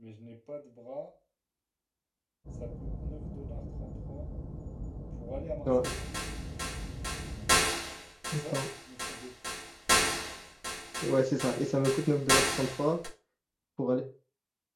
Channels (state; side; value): identical; both; correlation 1.00